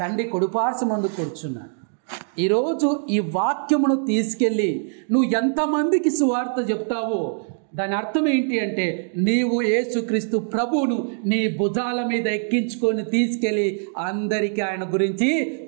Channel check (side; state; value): left; silent; 61 dB below the other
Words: కుడిపార్శ్వమందు కూర్చున్నాడు. ఈరోజు ఈ వాక్యమును తీసుకెళ్ళి నువ్వు ఎంతమందికి సువార్త చెప్తావో దాని అర్థం ఏంటి అంటే, నీవు యేసుక్రీస్తు ప్రభువును నీ భుజాల మీద ఎక్కించుకొని తీసుకెళ్ళి అందరికీ ఆయన గురించి